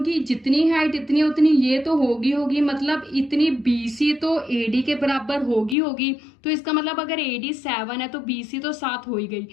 जितनी हाइट इतनी उतनी ये तो होगी मतलब इतनी BC तो AD के बराबर होगी। तो इसका मतलब अगर AD 7 है तो BC तो 7 हो ही गई।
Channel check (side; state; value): right; drops out; at 5.8 s